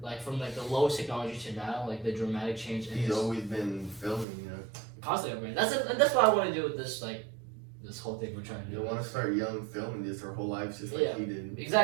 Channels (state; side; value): drops out; left; at 4.2 s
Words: Like from like the lowest technology to now, like the dramatic change. He's always been filming, you know. Constantly, that's what I want to do with this this whole thing we're trying to do. You want to start young filming this our whole lives just like he did.